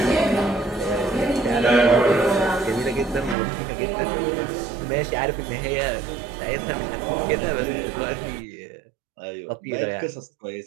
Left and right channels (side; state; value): left; drops out; at 3.4 s